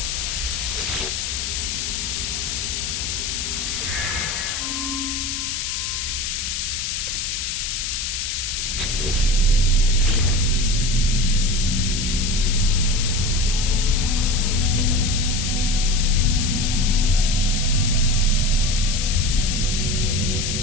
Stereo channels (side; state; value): left; noise; hiss, 2 dB below the sound